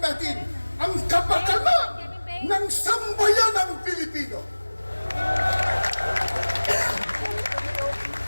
natin ang kapakanan ng sambayanang Pilipino.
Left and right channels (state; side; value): inverted; both; correlation -1.00